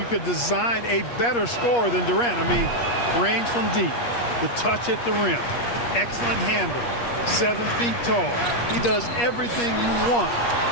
could design a better scorer than Durant. I mean, range from deep, the touch at the rim, excellent handle, 7 feet tall. He does everything you want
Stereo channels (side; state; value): right; late; 8.4 ms